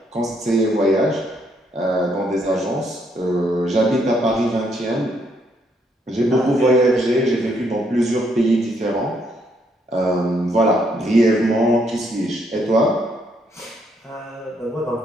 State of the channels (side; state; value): both; normal; correlation 0.73